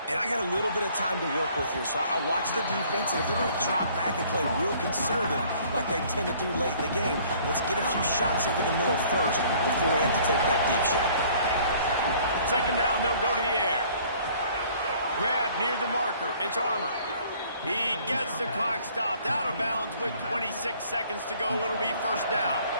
And I got a little bit of time to work with here, so I watch the defense, and if they're going to drop back and play real conservative like they tend to do late in the game, let's get a few shots over the middle first before we have to take that deep shot. Second down, they'll go to the air. Grab near the marker. It's Armour. He gets the clock stopped. Out of bounds with 26 seconds to go. It'll be first down.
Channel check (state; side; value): inverted; both; correlation -0.56